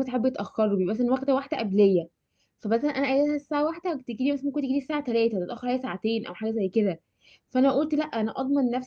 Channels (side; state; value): both; identical; correlation 1.00